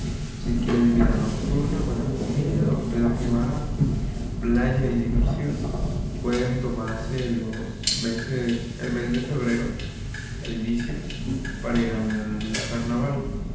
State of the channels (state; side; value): identical; both; correlation 1.00